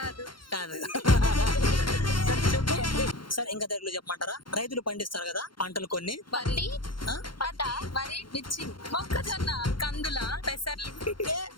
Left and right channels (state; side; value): late; right; 0.73 ms